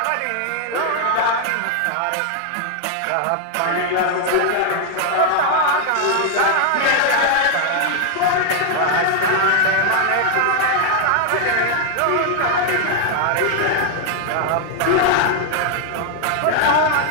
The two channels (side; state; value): both; different; correlation 0.00